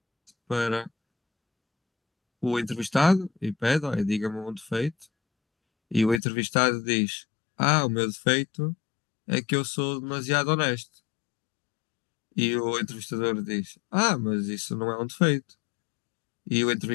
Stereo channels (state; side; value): drops out; right; at 6.2 s